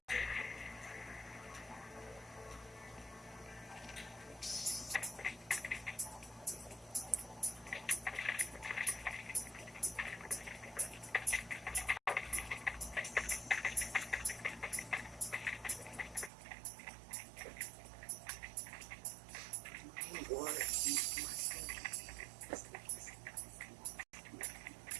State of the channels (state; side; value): drops out; left; at 16.3 s